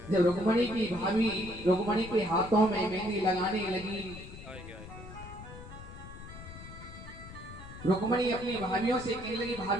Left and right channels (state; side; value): noise; left; rumble, 14 dB below the sound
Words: जब रुक्मणी की भाभी रुक्मणी के हाथों में मेहंदी लगाने लगी, रुक्मणी अपनी भाभियों से कहने लगी,